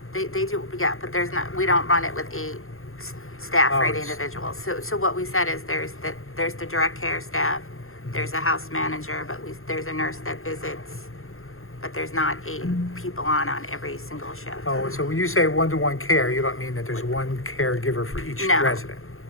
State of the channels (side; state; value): right; late; 0.61 ms